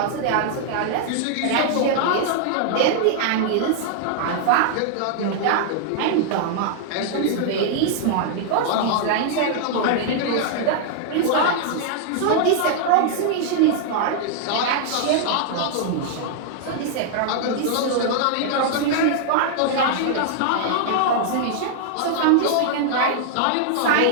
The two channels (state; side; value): different; both; correlation -0.01